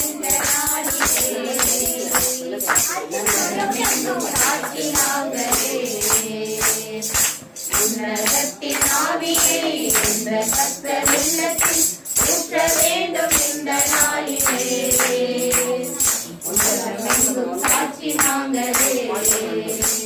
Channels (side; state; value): both; identical; correlation 1.00